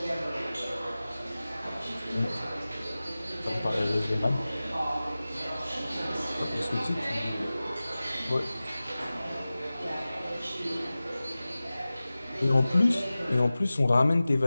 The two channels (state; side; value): inverted; both; correlation -0.97